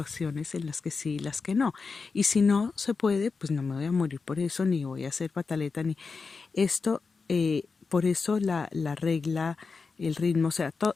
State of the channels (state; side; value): quieter; right; 4.7 dB